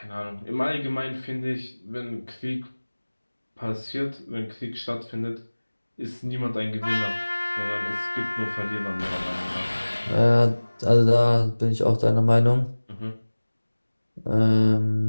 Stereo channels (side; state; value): both; inverted; correlation -1.00